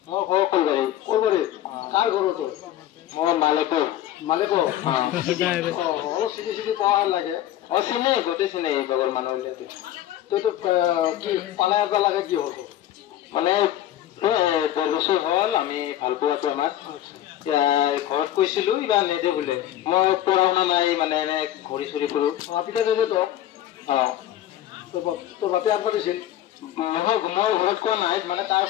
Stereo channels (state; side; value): quieter; right; 12.5 dB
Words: কলবাড়ি কলবাড়ি কার ঘর তোর মোর মালিকর মালিকর অলপ চিনি চিনি পাওয়া লাগে চিনি গোটেই চিনি বাগৰ মানুহ তই তো কি পালাই আবা লাগে কি হব মানে 10 বছৰ হল আমি ভাল পোৱাটো আমাক ঘৰত কৈছিলো ইবা নেদে বোলে মই পঢ়া শুনা নাই মানে এনে ঘূৰি চুৰি ফুৰো পিতা নেদে তো তোৰ বাপে আনবা দিছিল নহয় মই ঘৰত কোৱা নাই মানে তাৰ